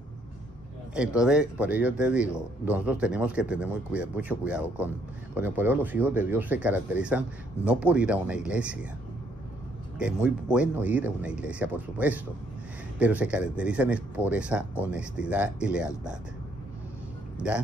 Entonces, por ello te digo, nosotros tenemos que tener mucho cuidado con el poder. Los hijos de Dios se caracterizan no por ir a una iglesia, que es muy bueno ir a una iglesia, por supuesto, pero se caracterizan es por esa honestidad y lealtad.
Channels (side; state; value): both; normal; correlation 0.68